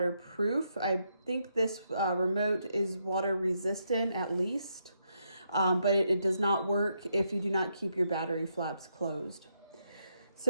I think this remote is water resistant at least. But it does not work if you do not keep your battery flaps closed.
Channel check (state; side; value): inverted; both; correlation -0.79